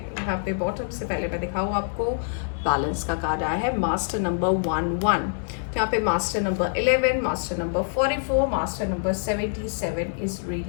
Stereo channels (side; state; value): right; silent; digital silence